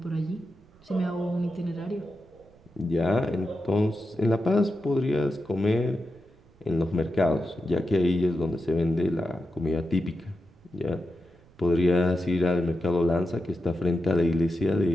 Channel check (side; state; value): right; noise; rumble, 28 dB below the sound